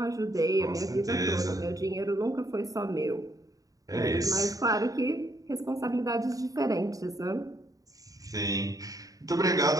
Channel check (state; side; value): late; left; 0.17 ms